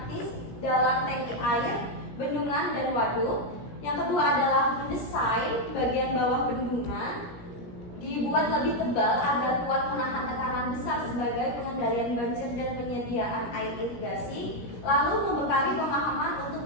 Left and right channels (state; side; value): late; right; 17 ms